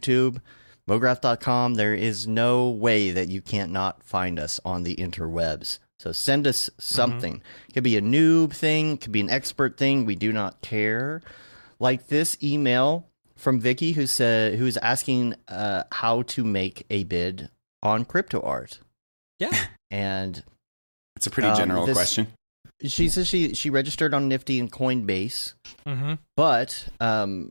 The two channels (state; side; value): inverted; both; correlation -1.00